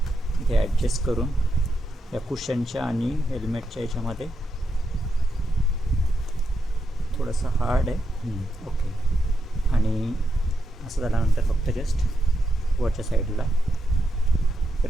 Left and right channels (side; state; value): both; normal; correlation 0.84